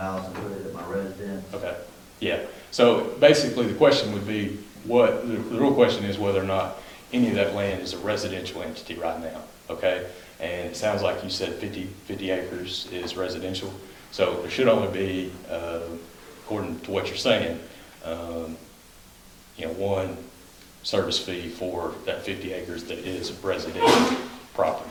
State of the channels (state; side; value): identical; both; correlation 1.00